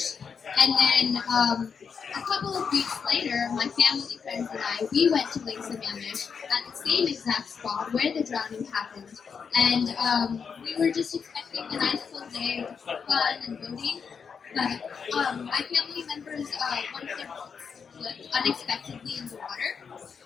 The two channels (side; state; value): right; quieter; 6.2 dB